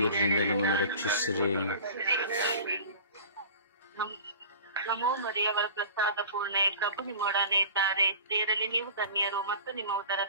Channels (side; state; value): both; inverted; correlation -0.40